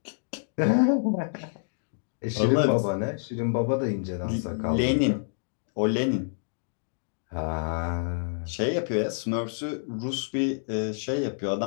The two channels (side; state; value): right; silent; digital silence